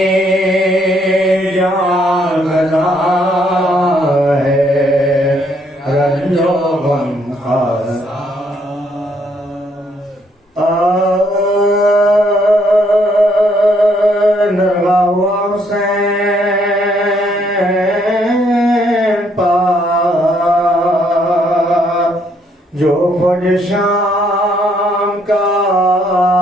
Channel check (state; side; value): normal; both; correlation 0.70